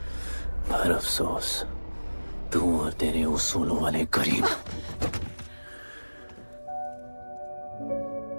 पर अफसोस तू और तेरे उसूलों वाले गरीब।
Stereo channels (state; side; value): inverted; both; correlation -1.00